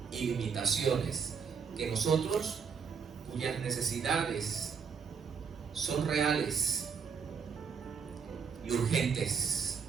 y limitaciones que nosotros, cuyas necesidades son reales y urgentes.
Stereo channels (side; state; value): left; quieter; 6.2 dB